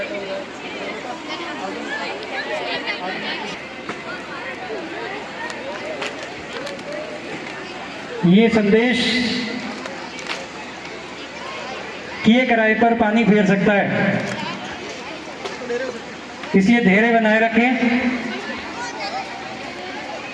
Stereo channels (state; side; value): identical; both; correlation 1.00